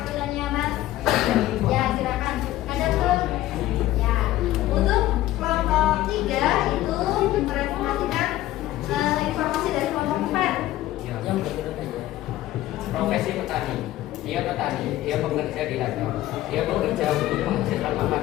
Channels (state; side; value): quieter; right; 15.1 dB